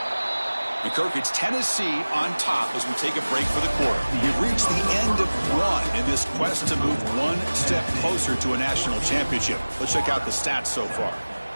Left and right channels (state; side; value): inverted; both; correlation -1.00